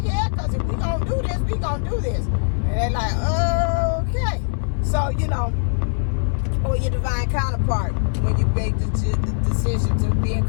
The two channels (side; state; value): right; silent; digital silence